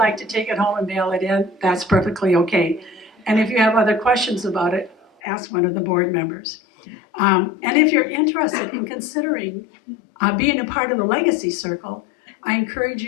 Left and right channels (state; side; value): drops out; right; at 5.1 s